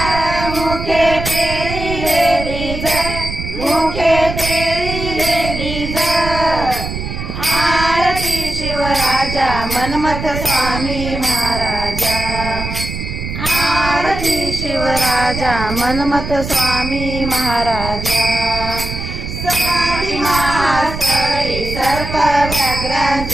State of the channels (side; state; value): right; noise; rumble, 6 dB below the sound